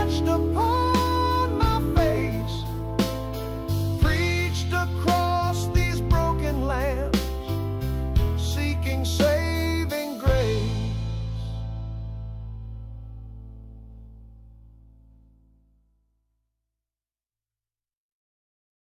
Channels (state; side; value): identical; both; correlation 1.00